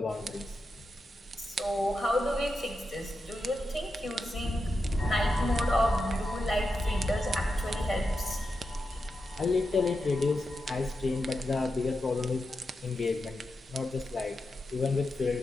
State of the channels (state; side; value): normal; both; correlation 0.88